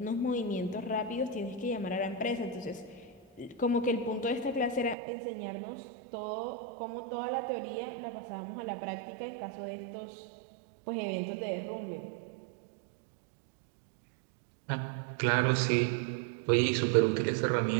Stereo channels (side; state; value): left; drops out; at 5.0 s